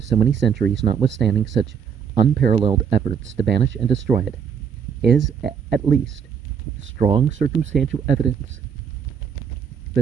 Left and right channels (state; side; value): quieter; left; 7.2 dB